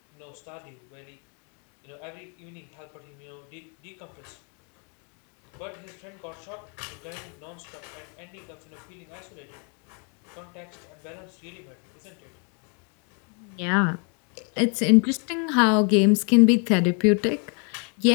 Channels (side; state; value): right; quieter; 38.2 dB